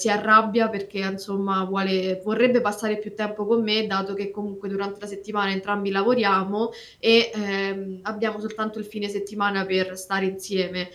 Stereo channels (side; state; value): both; identical; correlation 1.00